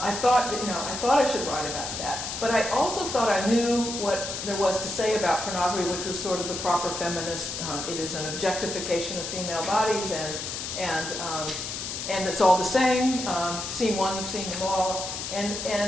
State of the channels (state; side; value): noise; left; hiss, 5 dB below the sound